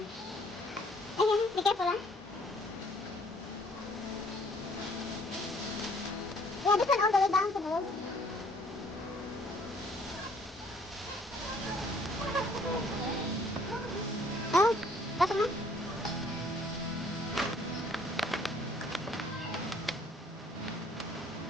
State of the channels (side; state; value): both; normal; correlation 0.60